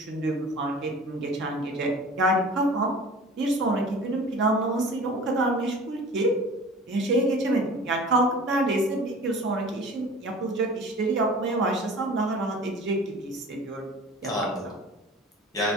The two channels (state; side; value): normal; both; correlation 0.42